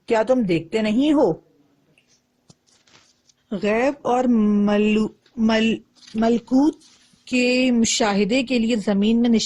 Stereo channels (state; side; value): identical; both; correlation 1.00